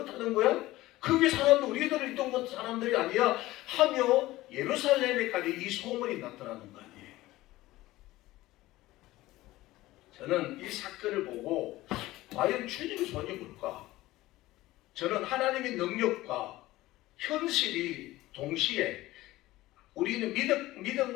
거야? 그게 사람들, 우리들 있던 것 사람들이 아니야 하며 예루살렘에까지 이 소문이 나타나는 거 아니에요. 저는 이 사건을 보고 과연 주님의 손이 뭘까? 저는 하나님의 능력과 현실이 동시에, 우리는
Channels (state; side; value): quieter; right; 17.4 dB